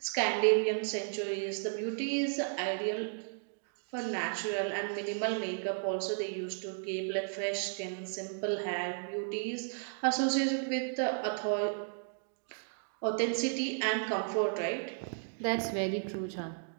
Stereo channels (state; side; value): silent; left; digital silence